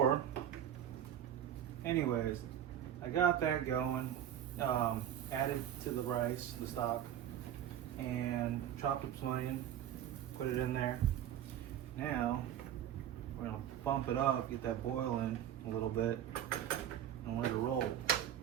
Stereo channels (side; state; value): left; quieter; 10.5 dB